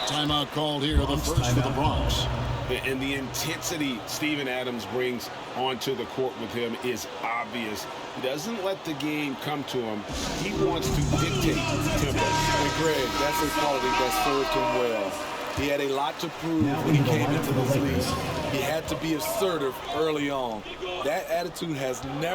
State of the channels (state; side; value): identical; both; correlation 1.00